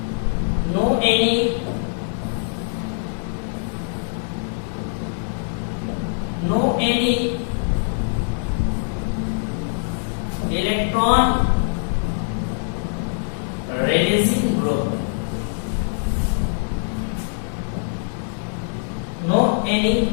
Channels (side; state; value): right; silent; 61 dB below the other